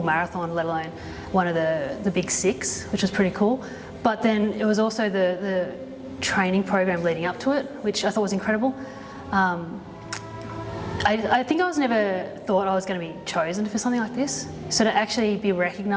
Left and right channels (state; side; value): identical; both; correlation 1.00